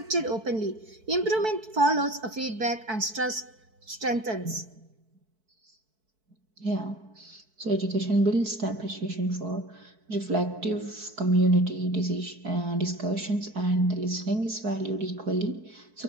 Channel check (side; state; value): left; late; 4.6 ms